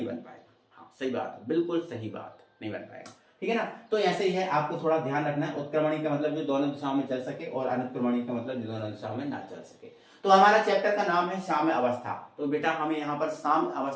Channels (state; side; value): identical; both; correlation 1.00